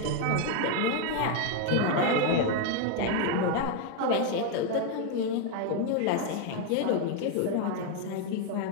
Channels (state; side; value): different; both; correlation 0.01